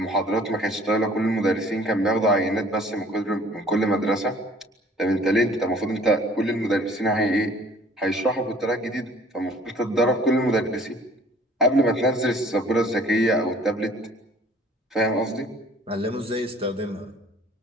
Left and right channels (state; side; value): normal; both; correlation 0.53